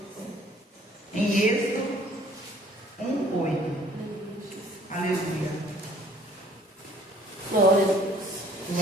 em Êxodo 1:8. Aleluia. Glória a Deus.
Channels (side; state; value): both; normal; correlation 0.57